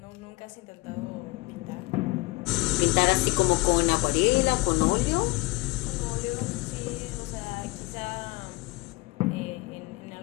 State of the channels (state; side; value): quieter; right; 23.2 dB